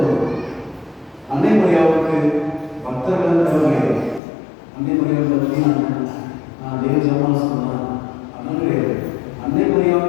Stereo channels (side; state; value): right; drops out; at 4.2 s